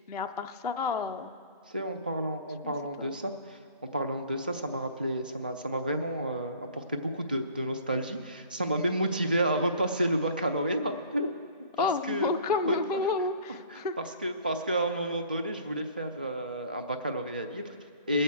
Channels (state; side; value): inverted; both; correlation -0.50